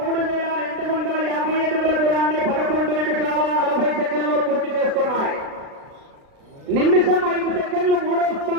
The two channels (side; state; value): left; late; 36 ms